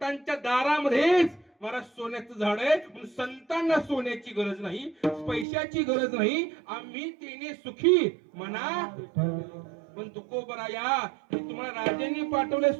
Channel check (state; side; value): drops out; left; at 5.5 s